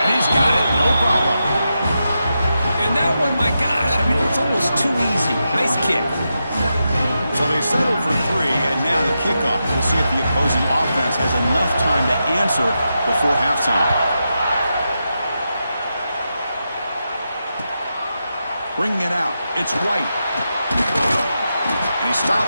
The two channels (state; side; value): inverted; both; correlation -0.87